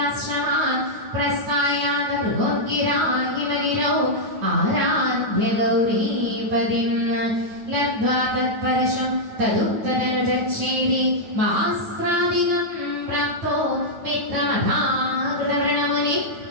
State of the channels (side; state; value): left; late; 9.3 ms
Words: प्रस्थायाद मृगोद्गिराहिमैरौ आराध्य गौरीपदिं लब्ध्वा तत्परशं तदुत्तदनुजच्छेदि मास्त्रादिगं प्राप्तो मित्रमधाकृतवृणमुनि